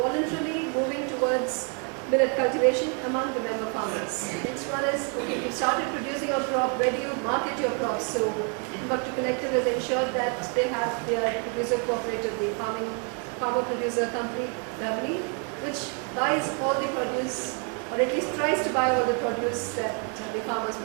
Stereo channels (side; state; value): left; quieter; 39.0 dB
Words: moving towards millet cultivation among the member farmers. Next one is, okay, you started producing a crop, where do you market your crops? So Timbuktu Collective has ensured that they have their producer cooperative, the farmer producer company, Lovely, which buys all the produce, or at least tries to buy all the produce that the farmers